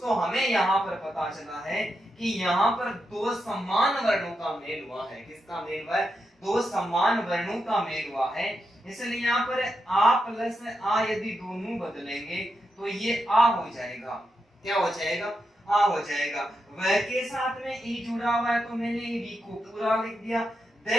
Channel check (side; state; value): both; normal; correlation 0.85